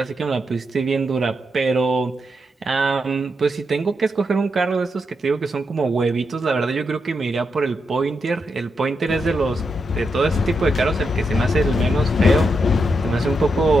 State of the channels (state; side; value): normal; both; correlation 0.84